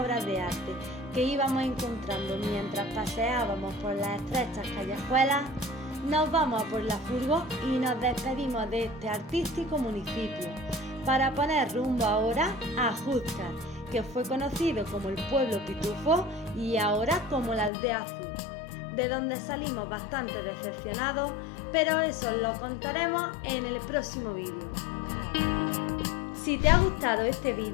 de arte que íbamos encontrando mientras paseábamos por las estrechas callejuelas, nos vamos a por la furgo y nos despedimos de este artístico municipio para poner rumbo ahora a Júzcar, que fue conocido como el pueblo pitufo y ahora como la aldea azul, de donde salimos bastante decepcionados, pero eso lo contaremos en el próximo vídeo. Si te ha gustado este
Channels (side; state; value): right; drops out; at 17.7 s